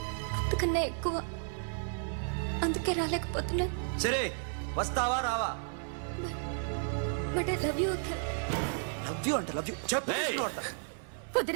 అంతకన్నా ఎక్కువ. అందుకే రాలేకపోతున్నాను. సరే వస్తావా రావా? But I love you Akhil. Love you అంటే లవ్ యూ చెప్పు.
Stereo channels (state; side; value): silent; left; 56 dB below the other